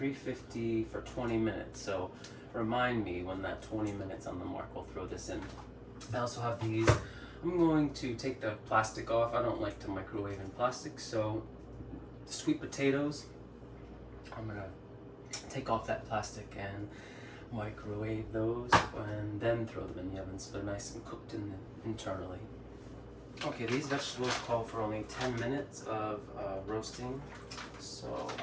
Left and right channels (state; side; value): identical; both; correlation 1.00